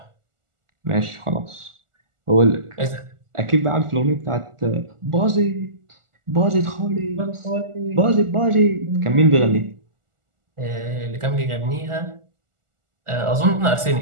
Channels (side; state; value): left; late; 1.4 ms